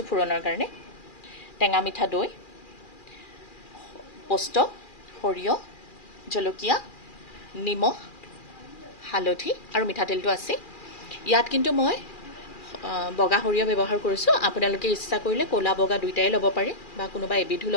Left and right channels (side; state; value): right; late; 2.4 ms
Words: ফুৰণৰ কাৰণে, টেঙা মিঠা দৈ, পোস্ত, সৰিয়হ, জলকীয়া, নিমখ, হালধি আৰু মিঠাতেলটো আছে। ইয়াত কিন্তু মই বগা সৰিয়হ ব্যৱহাৰ কৰিছোঁ। আপোনালোকে ইচ্ছা কৰিলে ক'লা বগা দুইটাই ল'ব পাৰে বা কোনোবা এবিধো